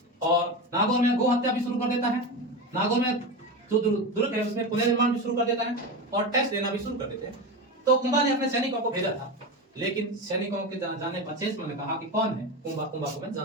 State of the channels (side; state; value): both; normal; correlation 0.21